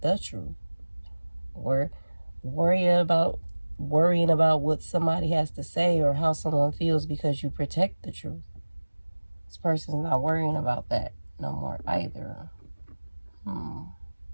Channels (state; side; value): inverted; both; correlation -1.00